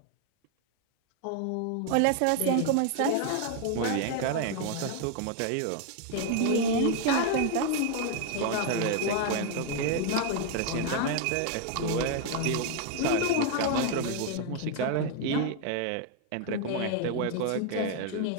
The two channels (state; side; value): different; both; correlation 0.00